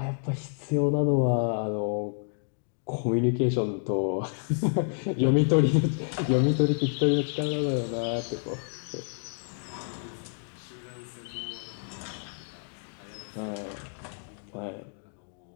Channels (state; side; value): silent; right; digital silence